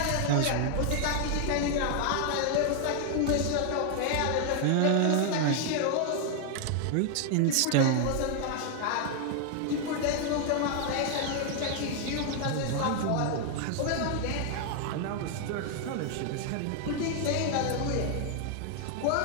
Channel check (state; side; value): different; both; correlation 0.00